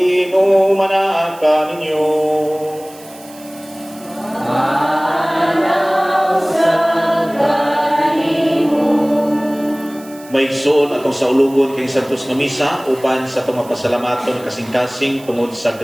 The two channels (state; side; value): noise; right; hiss, 22 dB below the sound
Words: ninyo. May igsoon atong sa ulugon kay Santos nga misa uban sa itong mapasalamaton kasing-kasing tungod sa